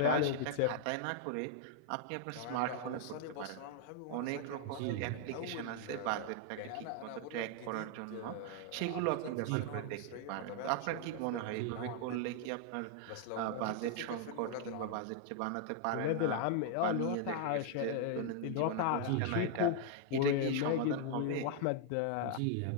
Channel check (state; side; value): different; both; correlation 0.00